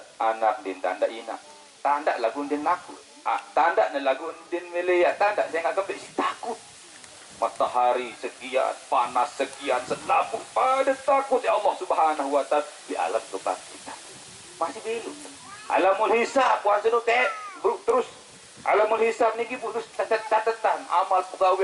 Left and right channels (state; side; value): identical; both; correlation 1.00